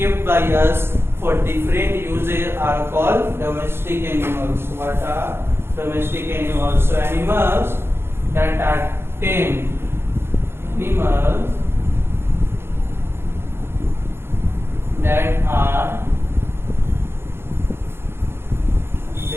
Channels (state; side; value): late; left; 0.11 ms